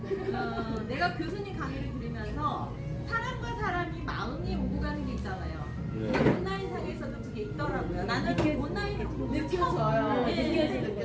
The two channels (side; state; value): both; identical; correlation 1.00